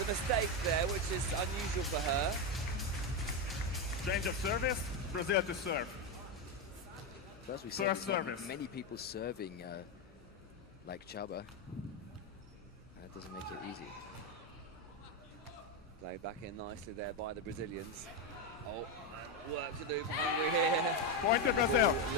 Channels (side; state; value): both; normal; correlation 0.09